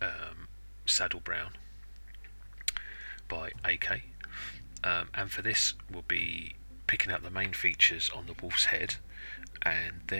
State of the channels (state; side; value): inverted; both; correlation -1.00